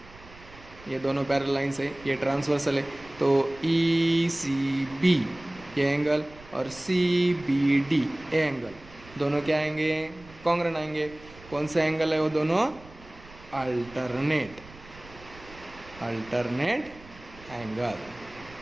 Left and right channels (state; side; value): noise; right; rumble, 21 dB below the sound